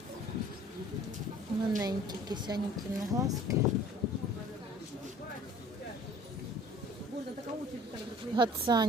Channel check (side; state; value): both; normal; correlation 0.50